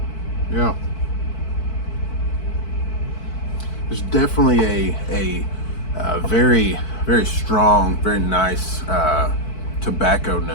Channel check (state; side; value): late; right; 4.5 ms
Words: Yeah. There's definitely a very, very strong, very nice tobacco